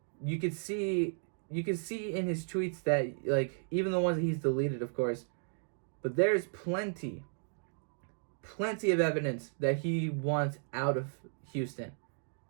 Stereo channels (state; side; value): silent; left; digital silence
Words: you could see in his tweets that, even the ones that he's deleted, of course, but there's plenty of evidence that he wants out of Houston.